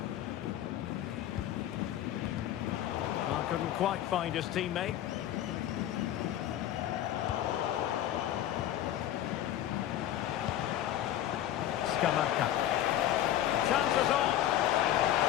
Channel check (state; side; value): quieter; right; 12.1 dB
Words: Well, couldn't quite find his teammate. Scamacca. Chances on.